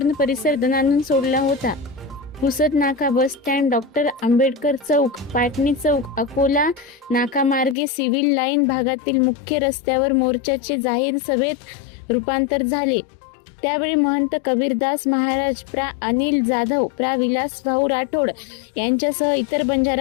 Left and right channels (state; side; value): drops out; right; at 7.8 s